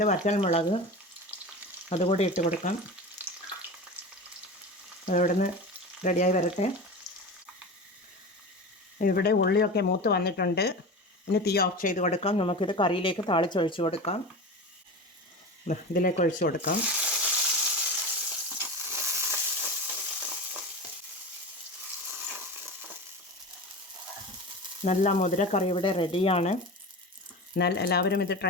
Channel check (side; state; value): both; normal; correlation 0.28